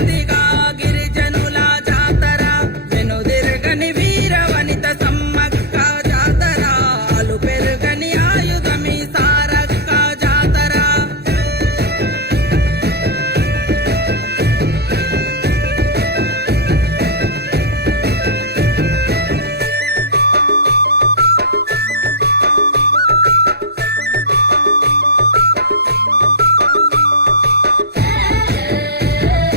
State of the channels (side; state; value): left; late; 0.47 ms